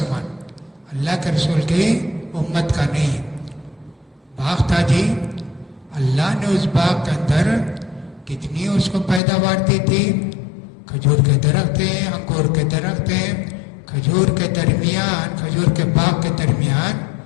اللہ کے رسول کی امت کا نہیں. باغ تھا جی، اللہ نے اس باغ کے اندر کتنی اس کو پیداوار دی تھی. کھجور کے درخت ہیں، انگور کے درخت ہیں، کھجور کے درمیان، کھجور کے باغ کے درمیان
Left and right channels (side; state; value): right; drops out; at 9.2 s